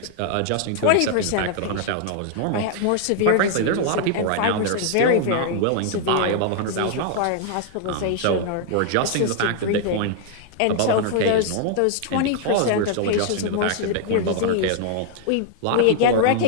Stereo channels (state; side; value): different; both; correlation -0.01